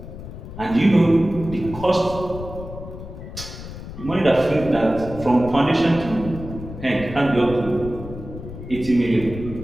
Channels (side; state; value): left; noise; rumble, 11 dB below the sound